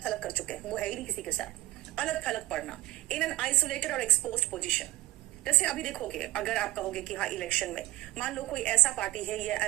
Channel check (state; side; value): quieter; left; 16.4 dB